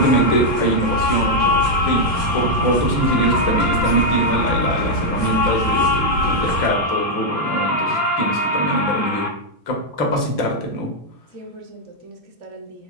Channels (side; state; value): right; late; 2.8 ms